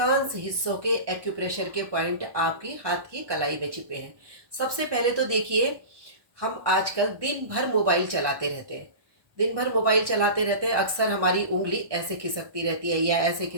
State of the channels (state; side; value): late; left; 1.1 ms